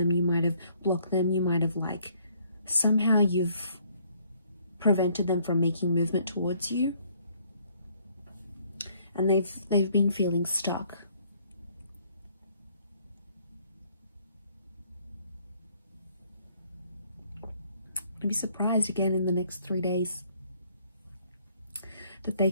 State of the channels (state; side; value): inverted; both; correlation -0.64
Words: You might have blocked them. You might have like somehow you've prevented them from making movement towards you. And they've been feeling stuck. I'd be surprised again in the next 3 days that they